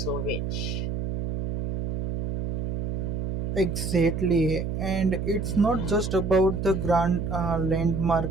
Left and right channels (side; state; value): right; noise; hum, 2 dB below the sound